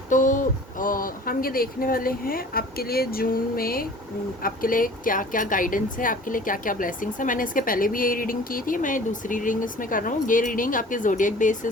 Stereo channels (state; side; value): normal; both; correlation 0.46